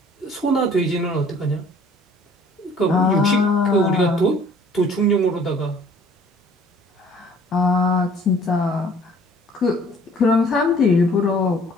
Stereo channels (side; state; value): both; normal; correlation 0.54